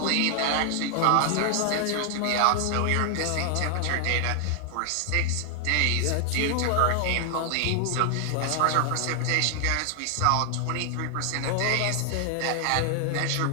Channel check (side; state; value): both; different; correlation 0.00